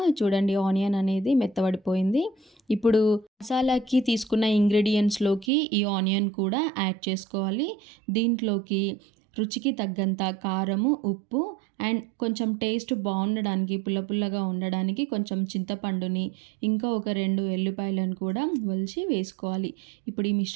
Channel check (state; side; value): drops out; left; at 5.5 s